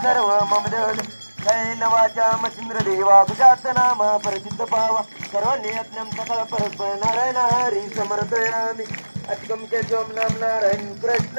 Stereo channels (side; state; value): both; inverted; correlation -1.00